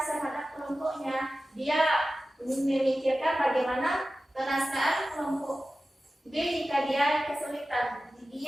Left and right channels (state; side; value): normal; both; correlation 0.95